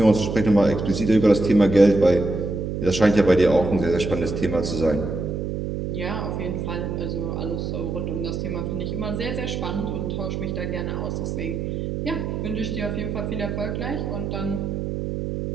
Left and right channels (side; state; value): right; noise; hum, 3 dB below the sound